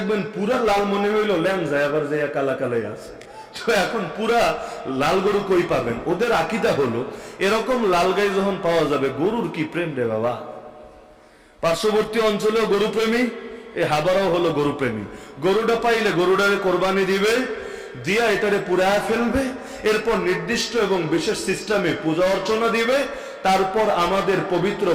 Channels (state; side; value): identical; both; correlation 1.00